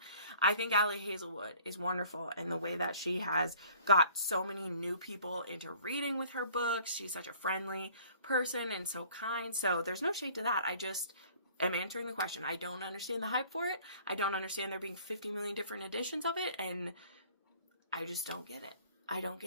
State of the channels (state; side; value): inverted; both; correlation -0.53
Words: I think Allie Hazelwood is wonderful in the way that she has got so many new people into reading with her books. She's such a friendly person and so kind. So there's no shade to that. I just am answering the question. I don't understand the hype for it. I don't understand there being 50 million different editions of it. And I just don't get it. I don't